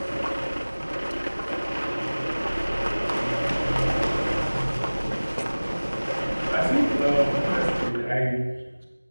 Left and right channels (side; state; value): both; inverted; correlation -1.00